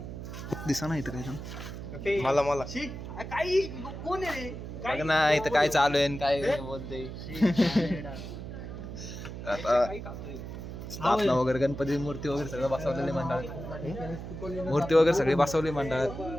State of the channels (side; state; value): right; noise; hum, 9 dB below the sound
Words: दिसा ना इथं काय मला काही कोण आहे रे? बघ ना इथं काय चालू आहे आणि काय बोलते. आता स्थापना वगैरे गणपती मूर्ती वगैरे सगळं बसवलेले मंडळात. मूर्ती वगैरे सगळी बसवली मंडळात.